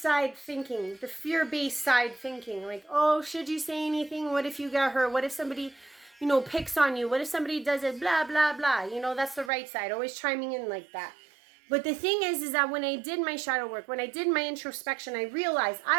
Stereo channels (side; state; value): left; drops out; at 9.5 s